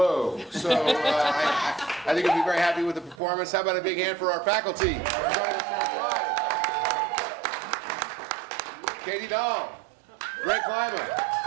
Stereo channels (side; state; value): left; drops out; at 3.2 s